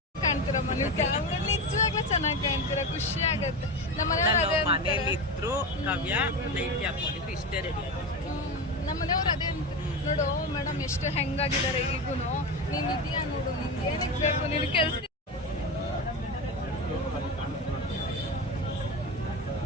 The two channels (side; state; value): both; normal; correlation 0.21